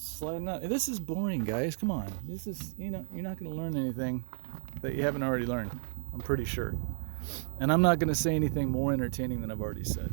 sliding up. This is boring, guys. Come on. This is, you know, you're not going to learn anything that you haven't already learned. I'm pretty sure. And I'm not going to say anything more entertaining than I've already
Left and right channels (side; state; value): left; silent; digital silence